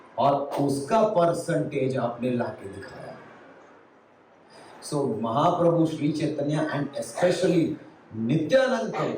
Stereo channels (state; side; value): identical; both; correlation 1.00